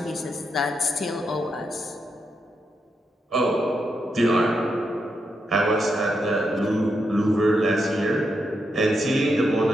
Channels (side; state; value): both; normal; correlation 0.83